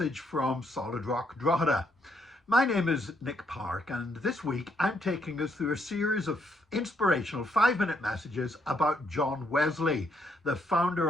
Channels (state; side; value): normal; both; correlation 0.73